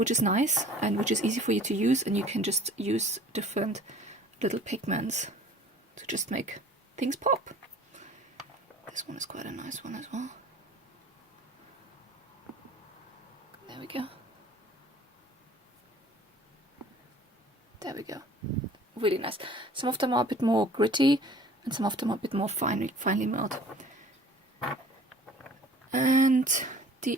is nice and which is easy for you to use, and you can just use different little pigments to just make things pop. This one is quite a nice one as well. There we go. There we go. Really nice. Some of them are a bit more gritty, and some of them are a bit more finely milled. And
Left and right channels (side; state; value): both; normal; correlation 0.49